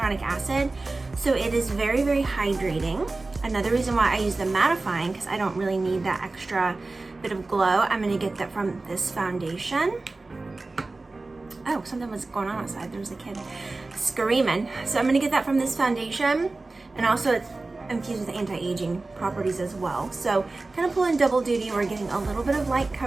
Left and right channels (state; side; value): quieter; left; 3.4 dB